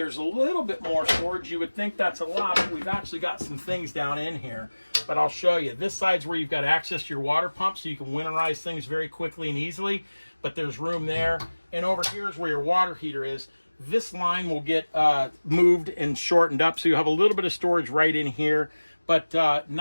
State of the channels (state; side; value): inverted; both; correlation -1.00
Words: a little bit more storage. You would think that's a lot, but we've actually got some things down in here. But I'll show you. This side's where you've got access to your water pump, so you can winterize things very quickly and easily. But there's room there. And over here is where your water heater is. This line will get moved and shortened up, so you have a little bit of storage right in here, but